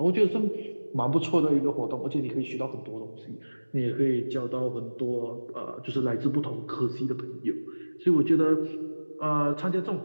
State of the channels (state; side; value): inverted; both; correlation -1.00